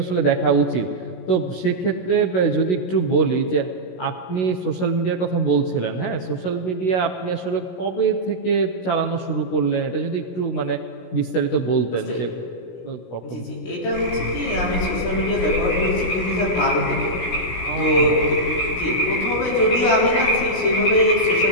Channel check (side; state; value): right; late; 16 ms